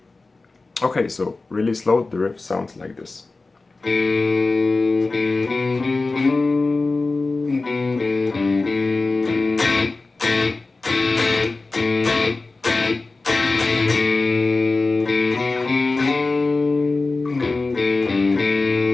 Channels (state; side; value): quieter; right; 3.6 dB